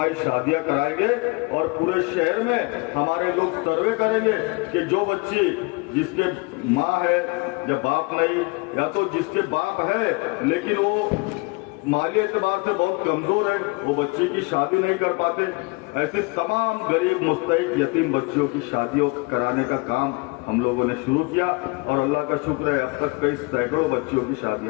शादियां कराएंगे और पूरे शहर में हमारे लोग सर्वे करेंगे कि जो बच्ची जिसके माँ है या बाप नहीं, या तो जिसके बाप है लेकिन वो माली एतबार से बहुत कमजोर है, वो बच्ची की शादी नहीं कर पाते, ऐसे तमाम गरीब मुस्तहिक यतीम बच्चियों की शादियों कराने का काम हम लोगों ने शुरू किया और अल्लाह का शुक्र है अब तक कई सैकड़ों बच्चियों की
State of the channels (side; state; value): right; quieter; 27.3 dB